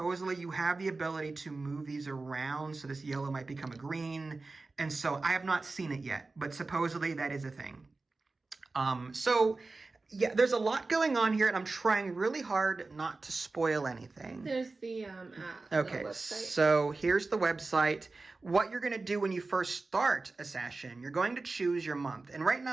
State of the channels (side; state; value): left; quieter; 3.6 dB